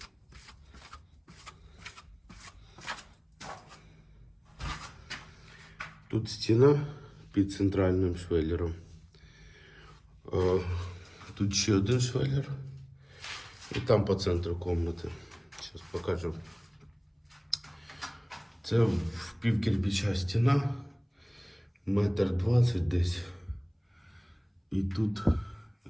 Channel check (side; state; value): both; identical; correlation 1.00